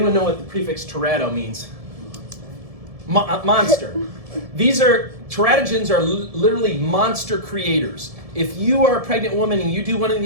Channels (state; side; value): late; left; 1.7 ms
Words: know what the prefix terato means? Monster. Teratogens are literally monster creators. If you are a pregnant woman and you do one of